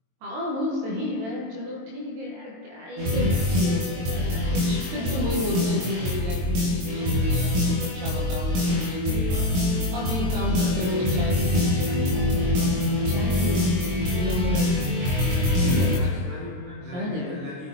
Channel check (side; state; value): left; late; 22 ms